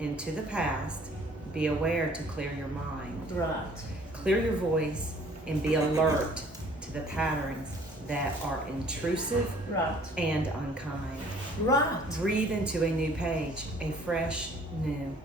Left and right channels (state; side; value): normal; both; correlation 0.55